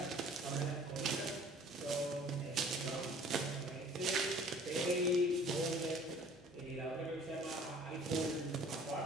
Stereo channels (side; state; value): both; normal; correlation 0.51